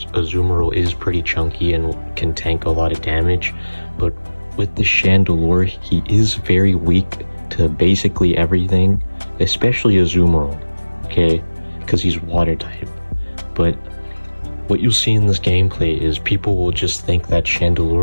Azumarill is pretty chunky and can tank a lot of damage. But with the Chandelure, he is very weak to basically everything, especially Azumarill, okay, because he's water type. But what you'll see in this gameplay is people will just think that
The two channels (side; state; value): both; inverted; correlation -1.00